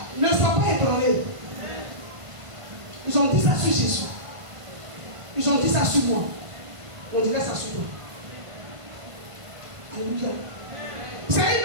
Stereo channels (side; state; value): left; late; 1.5 ms